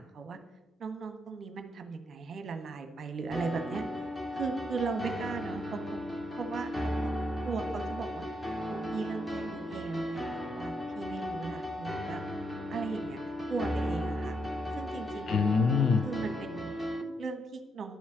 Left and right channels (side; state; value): both; normal; correlation 0.78